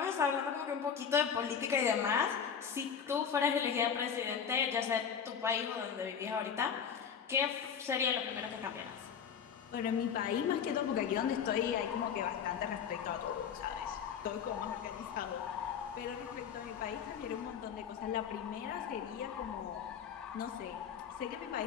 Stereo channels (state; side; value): quieter; right; 7.4 dB